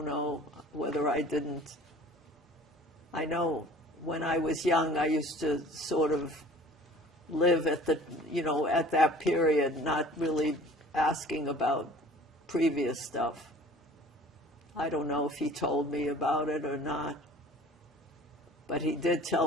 know whether I didn't. I know when I was young, I used to sort of live at at that period, not really asking about previous stuff. I don't know if he told me about it or not, but he did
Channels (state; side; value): normal; both; correlation 0.48